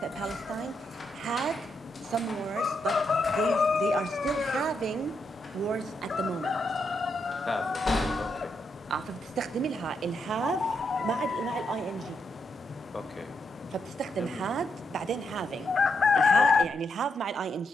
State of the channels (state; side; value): normal; both; correlation 0.80